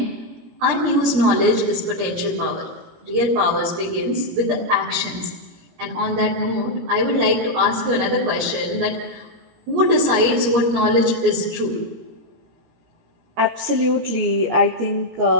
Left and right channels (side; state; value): left; late; 17 ms